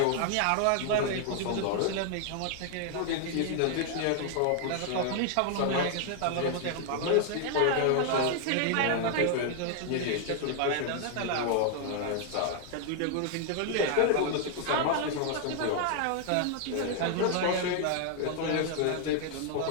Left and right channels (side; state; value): both; different; correlation 0.00